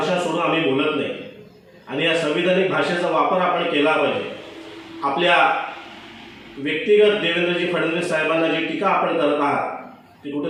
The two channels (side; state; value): both; identical; correlation 1.00